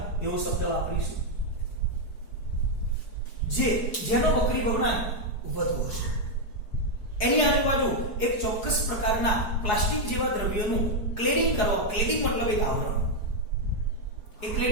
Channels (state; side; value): late; right; 4.6 ms